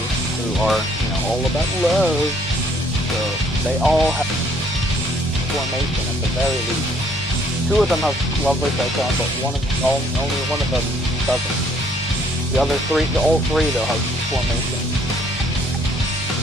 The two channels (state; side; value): normal; both; correlation 0.64